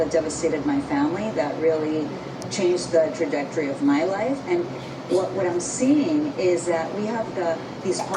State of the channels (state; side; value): identical; both; correlation 1.00